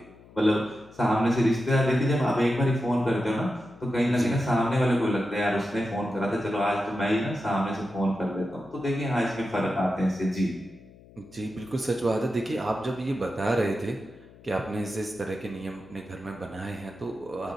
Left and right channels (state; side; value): noise; left; hum, 23 dB below the sound